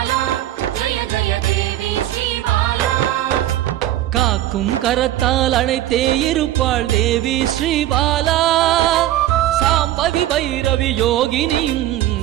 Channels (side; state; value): left; quieter; 13.6 dB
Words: ஜெய ஜெய தேவி ஸ்ரீபாலா காக்கும் கரத்தால் அணைத்தே இருப்பாள் தேவி ஸ்ரீபாலா சாம்பவி பைரவி யோகினியும்